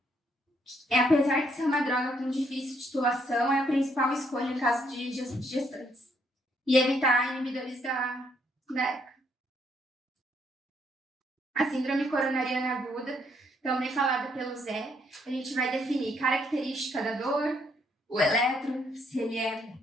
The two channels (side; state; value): both; normal; correlation 0.71